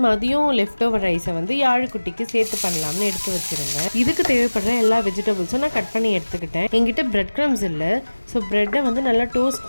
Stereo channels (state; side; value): inverted; both; correlation -1.00